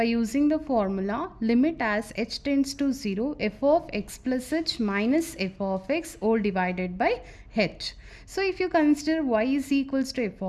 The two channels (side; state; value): both; identical; correlation 1.00